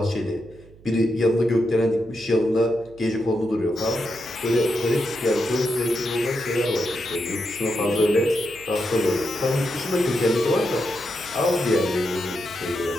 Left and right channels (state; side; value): noise; right; hum, 24 dB below the sound